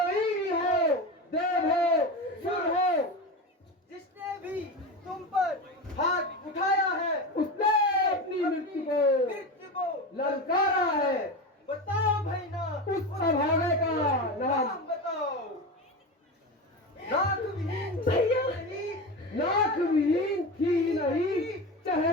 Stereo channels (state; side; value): normal; both; correlation 0.23